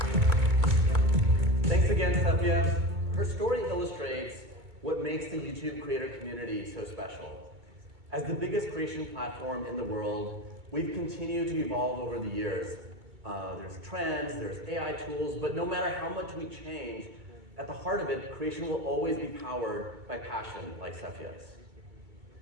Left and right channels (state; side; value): late; left; 2.2 ms